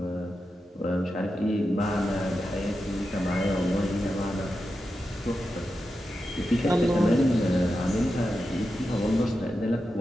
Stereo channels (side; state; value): both; normal; correlation 0.90